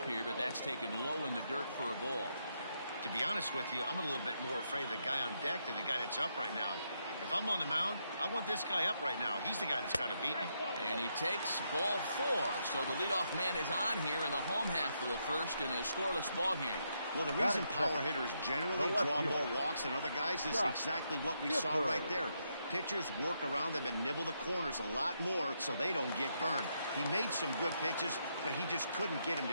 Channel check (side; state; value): both; inverted; correlation -0.79